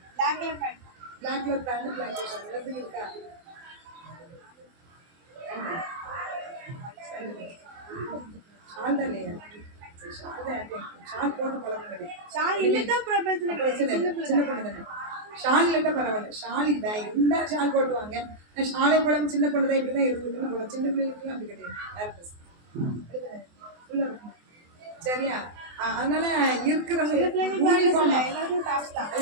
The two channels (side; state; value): left; late; 24 ms